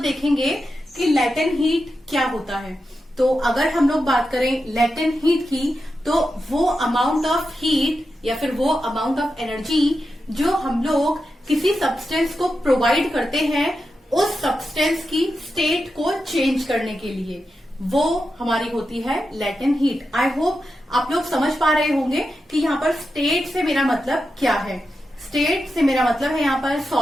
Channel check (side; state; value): both; normal; correlation 0.89